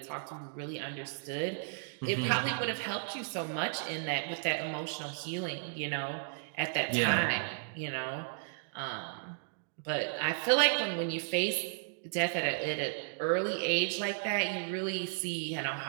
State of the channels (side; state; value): left; silent; digital silence